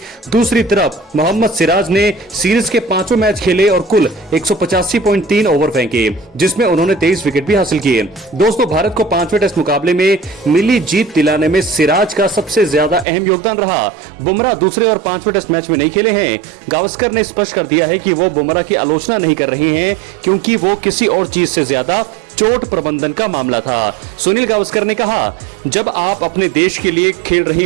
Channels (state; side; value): drops out; left; at 13.1 s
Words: दूसरी तरफ मोहम्मद सिराज ने सीरीज के 5 मैच खेले और कुल 185.3 ओवर फेंके, जिसमें उन्होंने 23 विकेट भी हासिल किए। दोस्तों भारत को 5वें टेस्ट मुकाबले में मिली जीत दिलाने में सिराज का सबसे ज्यादा अहम योगदान रहा। बुमराह दूसरे और 5वें टेस्ट मैच में नहीं खेले हैं। गावस्कर ने स्पष्ट कर दिया है कि वो बुमराह की आलोचना नहीं कर रहे हैं, क्योंकि वो किसी और चीज से ज्यादा चोट प्रबंधन का मामला था। सुनील गावस्कर ने कहा, जब आप अपने देश के लिए खेल रहे